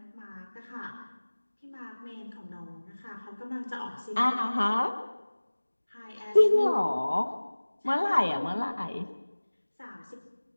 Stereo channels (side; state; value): both; inverted; correlation -1.00